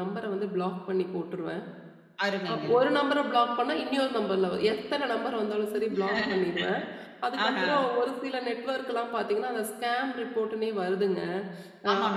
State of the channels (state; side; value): identical; both; correlation 1.00